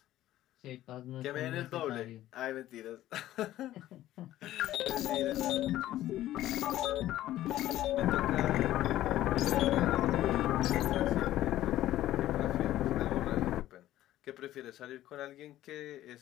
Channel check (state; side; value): quieter; right; 14.0 dB